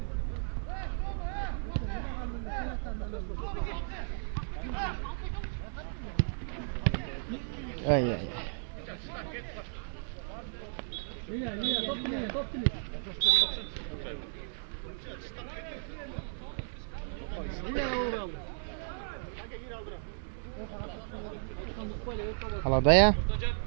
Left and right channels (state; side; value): silent; left; digital silence